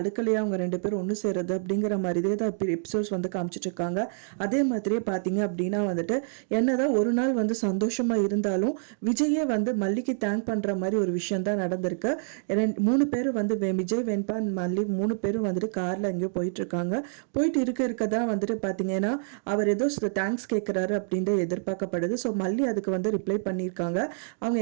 அவங்க ரெண்டு பேரும் ஒன்று சேருது அப்படிங்கிற மாதிரியே தான் எபிசோட்ஸ் வந்து காமிச்சிட்டு இருக்காங்க. அதே மாதிரியே பார்த்தீங்க அப்படின்னா வந்துட்டு என்னதான் ஒரு நாள் வந்து சந்தோஷமாக இருந்தாலும் விஜயே வந்து மல்லிக்கு தேங்க் பண்ணுற மாதிரி ஒரு விஷயம் தான் நடந்திருக்கு. மூணு பேர் வந்து விஜய், வெண்பா, மல்லி மூணு பேரும் வந்துட்டு காரில் எங்கேயோ போயிட்டுருக்காங்க. போயிட்டு இருக்க தான் வந்துட்டு பார்த்தீங்கன்னா அவர் ஏதோ தேங்க்ஸ் கேட்குறாரு அப்படின்ட்டு எதிர்பார்க்கப்படுது. ஸோ மல்லி அதுக்கு வந்து ரிப்ளை பண்ணியிருக்காங்க. அவங்க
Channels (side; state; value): left; silent; digital silence